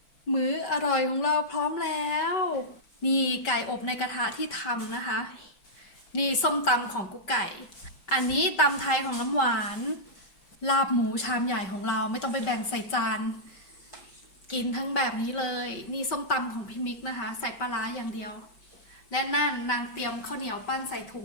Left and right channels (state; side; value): late; right; 5.2 ms